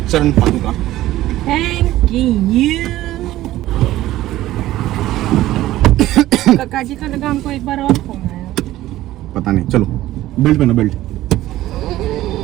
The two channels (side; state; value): left; quieter; 15.2 dB